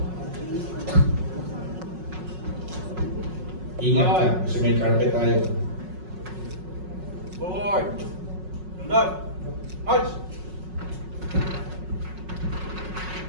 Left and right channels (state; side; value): late; left; 5.4 ms